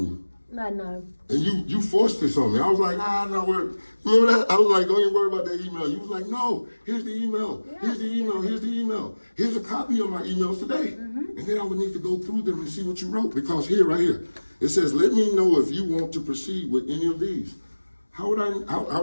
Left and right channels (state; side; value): inverted; both; correlation -1.00